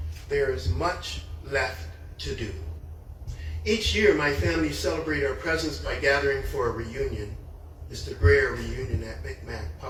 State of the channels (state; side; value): identical; both; correlation 1.00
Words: there is much left to do. Each year, my family celebrate our presence by gathering for a reunion. It's the rare reunion at Micmac